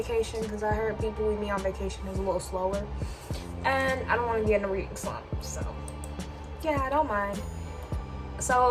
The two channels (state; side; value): identical; both; correlation 1.00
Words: because I heard People We Meet on Vacation is a little slower, and I don't want to get in a reading slump, so yeah, I don't mind.